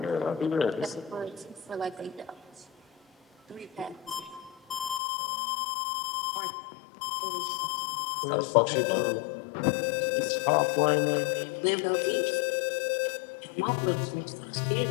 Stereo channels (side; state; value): right; drops out; at 5.0 s